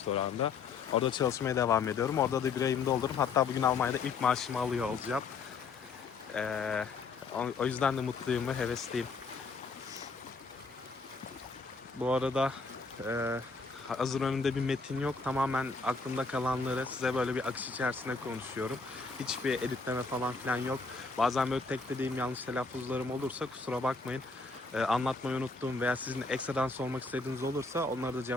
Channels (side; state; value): right; quieter; 4.4 dB